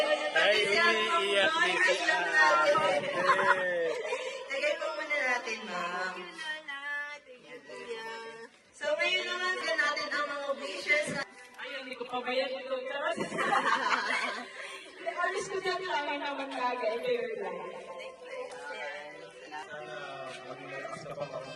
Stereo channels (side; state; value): both; identical; correlation 1.00